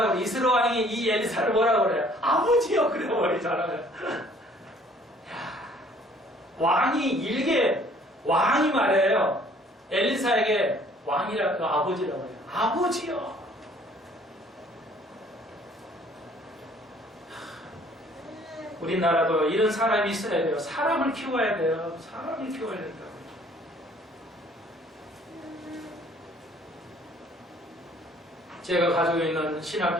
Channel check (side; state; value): both; normal; correlation 0.57